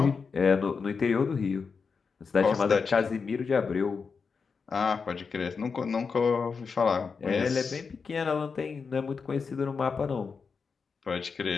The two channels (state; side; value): quieter; right; 5.3 dB